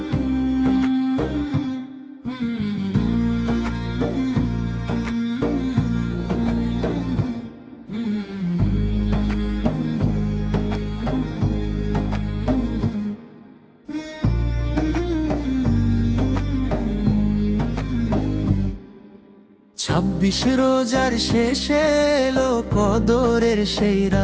রোজার শেষে এলো কদরের সেই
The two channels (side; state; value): both; identical; correlation 1.00